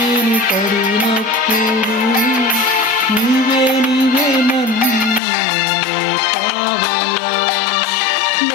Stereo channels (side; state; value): right; drops out; at 5.2 s